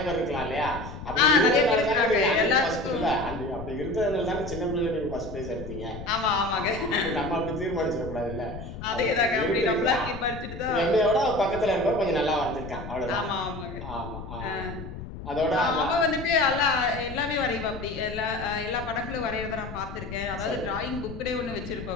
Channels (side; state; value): left; noise; rumble, 10 dB below the sound